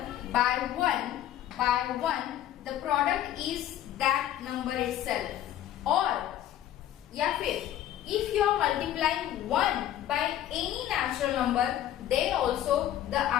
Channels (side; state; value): right; quieter; 12.0 dB